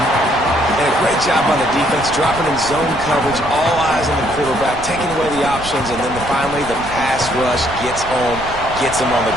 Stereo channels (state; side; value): noise; right; rumble, 13 dB below the sound